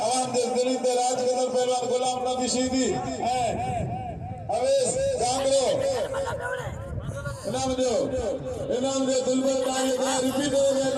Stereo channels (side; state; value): both; identical; correlation 1.00